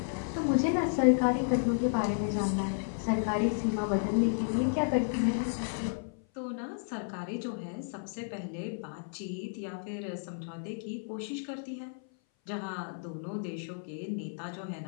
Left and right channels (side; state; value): right; silent; 56 dB below the other